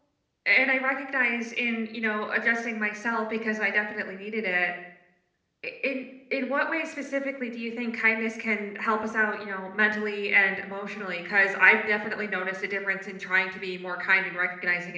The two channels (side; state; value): both; identical; correlation 1.00